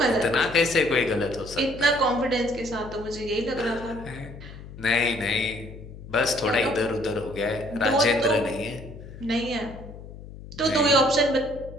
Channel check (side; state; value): left; noise; hum, 15 dB below the sound